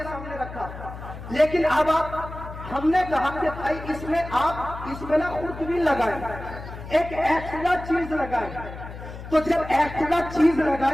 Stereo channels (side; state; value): left; noise; hum, 12 dB below the sound